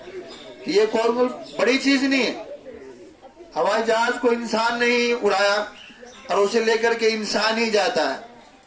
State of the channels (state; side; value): identical; both; correlation 1.00